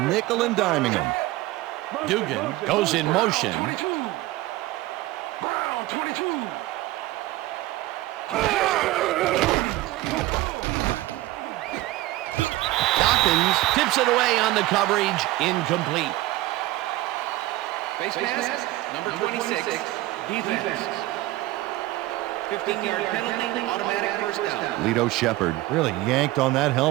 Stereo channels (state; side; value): quieter; left; 17.6 dB